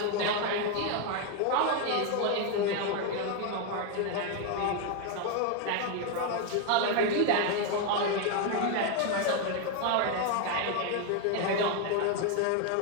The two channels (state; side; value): different; both; correlation 0.01